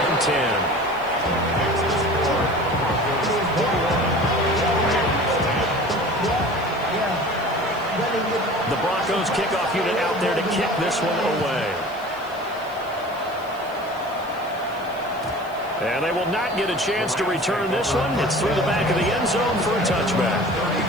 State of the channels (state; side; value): noise; left; hiss, 25 dB below the sound